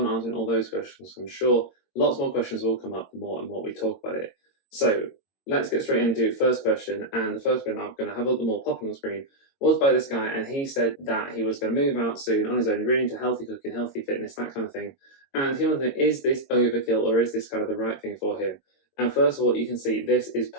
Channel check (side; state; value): right; late; 22 ms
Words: answering all those questions. I'm sure lots more questions will come up the more and more we talk about it. So let's get straight into first question. And the first one I'm going to have a little more pop on the screen was by this guy, and he said that he was going to move out soon on his own, really into healthy cooking, healthy fitness, that kind of thing. And he wanted to know, is this overkill or is this kind of the right thing for him? And first of all, you can see this is